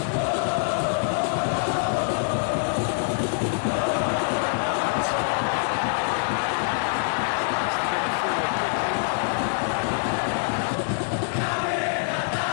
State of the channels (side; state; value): right; silent; 62 dB below the other